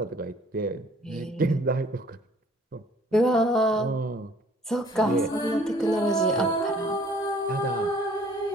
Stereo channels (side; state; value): both; normal; correlation 0.57